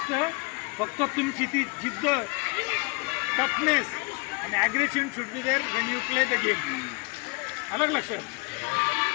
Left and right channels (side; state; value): right; quieter; 29.1 dB